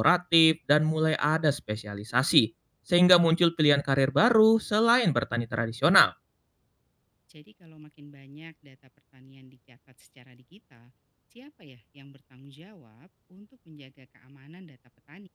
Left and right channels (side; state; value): both; identical; correlation 1.00